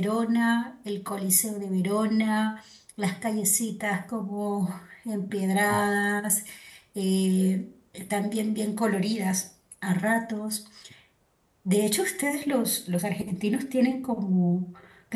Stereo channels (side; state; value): both; identical; correlation 1.00